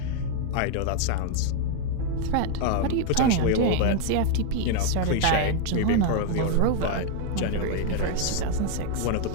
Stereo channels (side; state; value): both; different; correlation 0.00